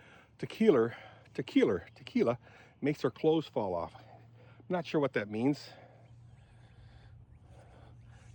Tequila Makes Her Clothes Fall Off. I'm not sure what that means,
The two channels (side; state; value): both; identical; correlation 1.00